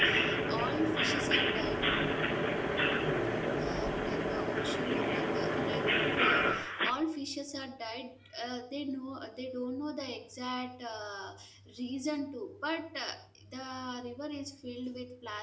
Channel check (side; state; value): both; identical; correlation 1.00